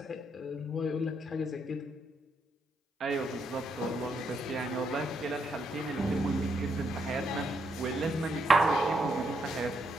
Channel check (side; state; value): both; normal; correlation 0.77